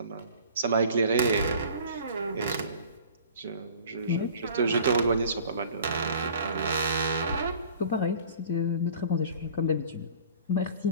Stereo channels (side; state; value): both; inverted; correlation -0.47